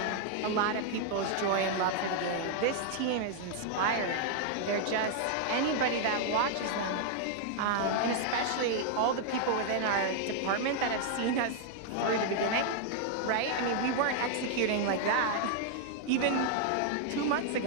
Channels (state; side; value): different; both; correlation 0.00